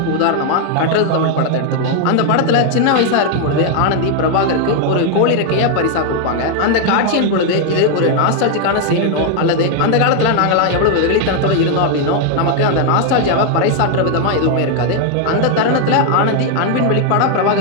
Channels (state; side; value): different; both; correlation 0.00